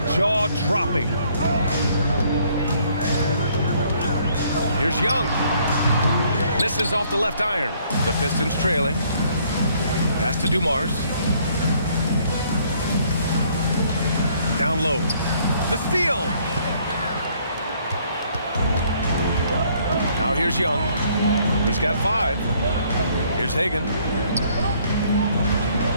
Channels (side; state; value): both; inverted; correlation -0.64